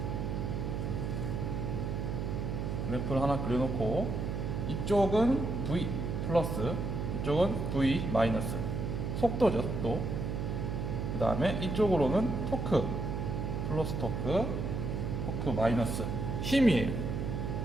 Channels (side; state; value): right; noise; hum, 2 dB below the sound